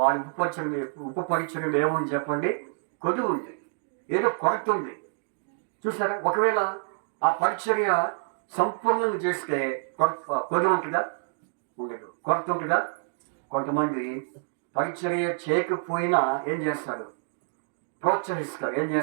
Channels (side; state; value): left; silent; digital silence